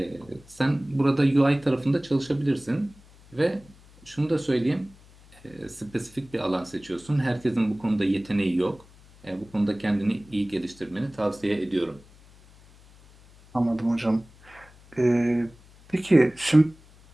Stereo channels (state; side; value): noise; left; hum, 25 dB below the sound